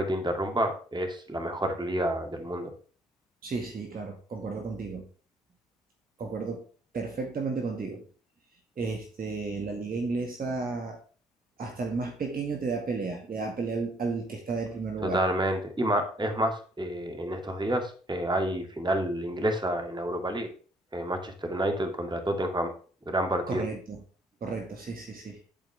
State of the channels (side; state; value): both; normal; correlation 0.65